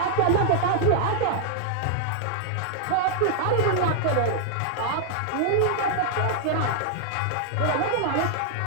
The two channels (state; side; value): different; both; correlation -0.01